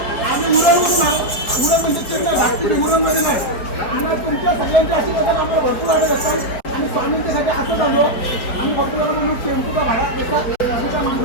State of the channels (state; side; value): late; right; 4.9 ms